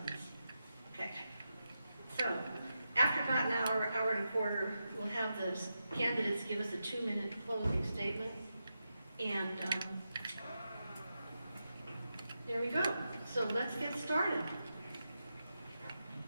Okay. So, after about an hour, hour and a quarter, we'll have the candidates give us a 2-minute closing statement. And there we go. So let's get started.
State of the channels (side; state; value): both; inverted; correlation -0.88